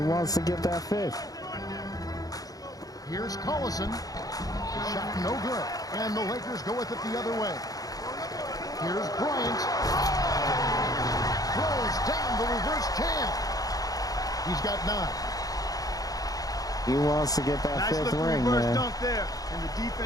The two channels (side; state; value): right; late; 0.18 ms